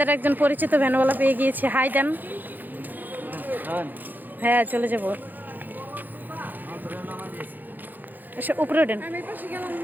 একজন পরিচিত ভ্যানওয়ালা পেয়ে গিয়েছে। হাই দেন। হ্যাঁ চলে যাবো, উপরে ওঠেন।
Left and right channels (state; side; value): late; left; 0.086 ms